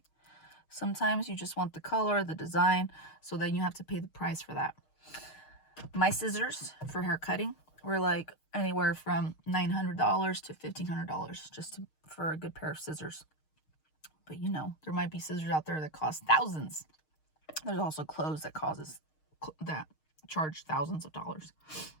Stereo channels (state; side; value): late; right; 6.5 ms